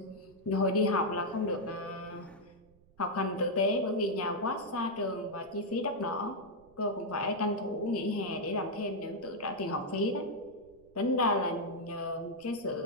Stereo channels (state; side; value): noise; right; rumble, 29 dB below the sound